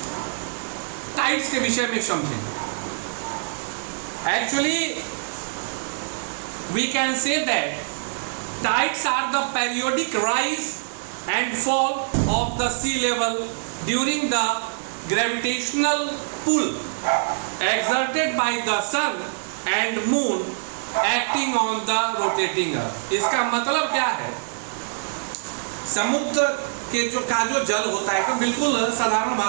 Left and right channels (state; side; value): silent; left; digital silence